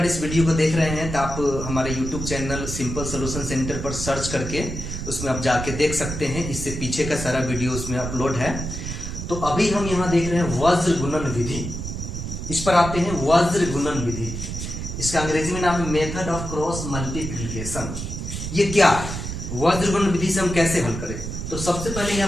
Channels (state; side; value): noise; right; rumble, 6 dB below the sound